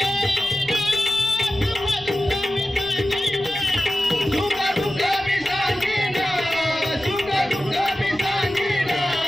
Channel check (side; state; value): left; noise; rumble, 24 dB below the sound